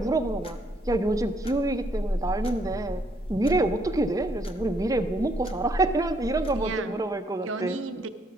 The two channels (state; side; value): normal; both; correlation 0.70